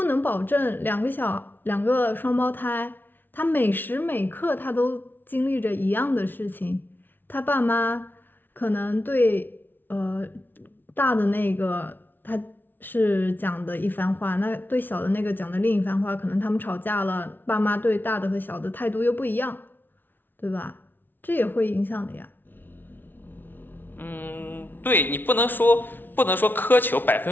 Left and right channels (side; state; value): right; late; 0.094 ms